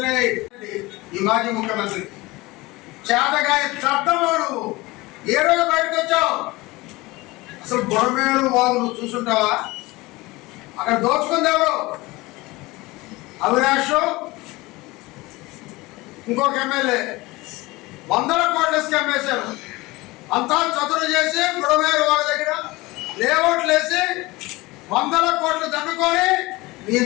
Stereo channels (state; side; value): quieter; right; 21.5 dB